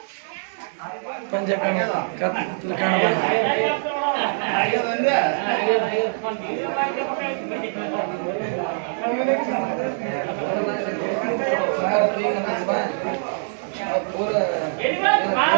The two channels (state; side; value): silent; left; 63 dB below the other